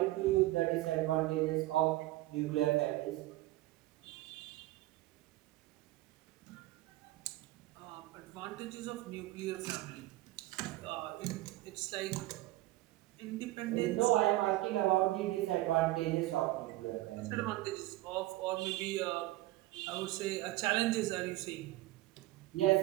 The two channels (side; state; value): left; quieter; 17.6 dB